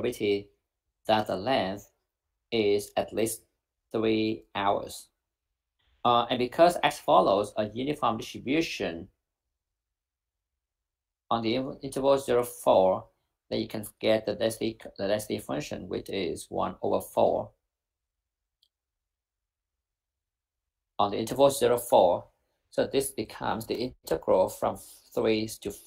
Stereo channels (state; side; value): identical; both; correlation 1.00